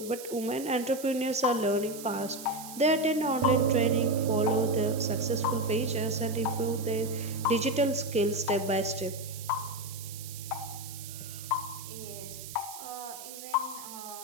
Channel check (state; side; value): noise; right; hiss, 12 dB below the sound